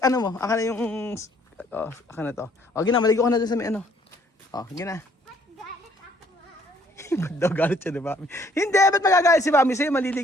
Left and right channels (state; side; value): normal; both; correlation 0.63